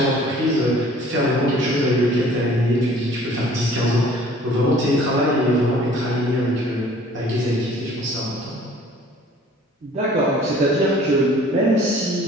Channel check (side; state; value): both; normal; correlation 0.52